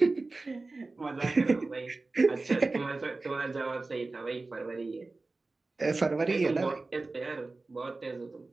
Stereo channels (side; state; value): left; quieter; 3.4 dB